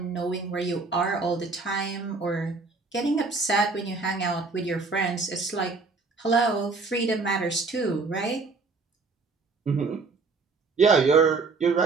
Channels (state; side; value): quieter; left; 4.1 dB